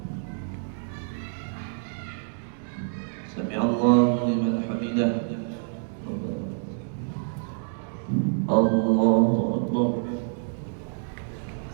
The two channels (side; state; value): left; silent; 60 dB below the other